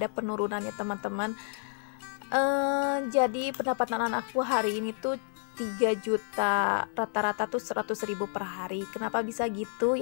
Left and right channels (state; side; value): silent; right; digital silence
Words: penurunannya teman-teman. Jadi pendapatan aku hari ini tuh 3 juta, rata-rata tuh 100.000 per hari. Kenapa bisa gitu?